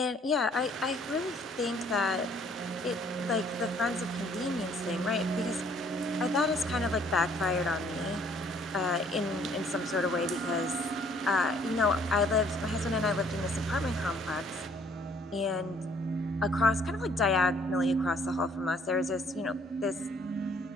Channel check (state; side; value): normal; both; correlation 0.61